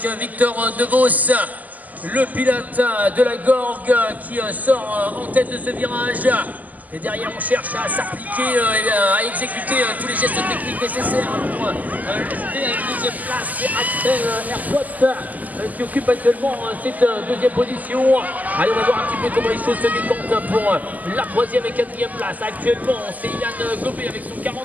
Victor Devos, le pilote de la Gorgue qui sort en tête de ce virage. Et derrière, on cherche à s'appliquer et à exécuter tous les gestes techniques nécessaires pour rester à une 2e place. C'est Axel Airpot qui occupe actuellement cette 2e position. Allez, on va voir un petit peu comment les choses se décantent pour la 3e et 4e place. Actuellement, c'est Yann Gobet avec son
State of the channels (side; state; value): left; late; 0.080 ms